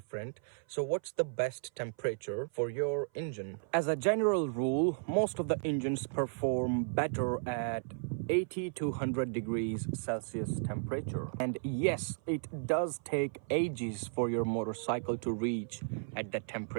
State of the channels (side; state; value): left; silent; 55 dB below the other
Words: So what's the best temperature for your engine? As a general rule, most of the engines perform better at 80 to 100 degrees Celsius temperature. And yes, it does take ages for your motorcycle to reach at that